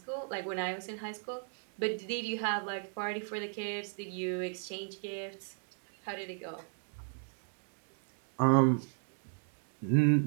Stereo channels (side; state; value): left; silent; 54 dB below the other